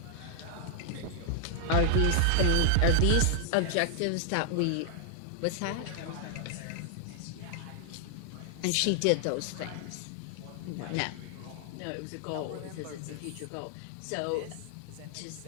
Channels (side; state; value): both; different; correlation 0.00